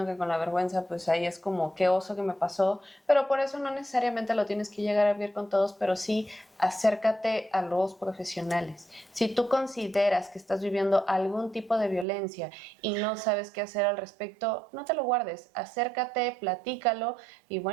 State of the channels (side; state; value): left; drops out; at 12.1 s